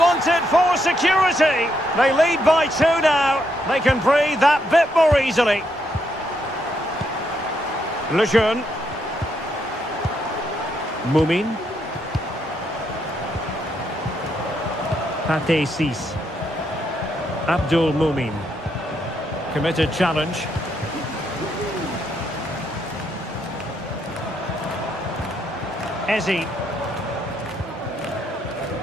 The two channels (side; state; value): both; normal; correlation 0.77